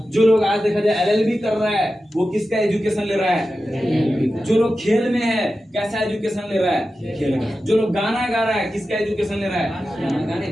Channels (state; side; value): normal; both; correlation 0.92